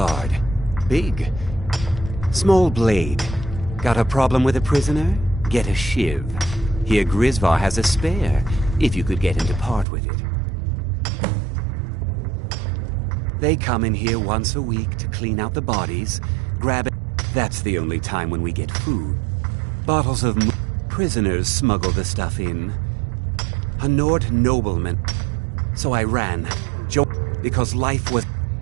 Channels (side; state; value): left; drops out; at 9.9 s